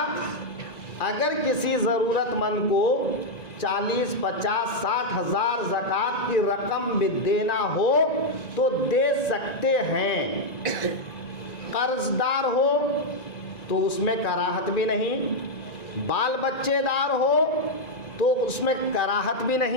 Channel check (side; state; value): right; late; 1.9 ms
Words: اگر کسی ضرورت مند کو 40، 50، 60 ہزار زکوٰۃ کی رقم بھی دینا ہو تو دے سکتے ہیں۔ قرض دار ہو تو اس میں کراہت بھی نہیں، بال بچے دار ہو تو اس میں کراہت بھی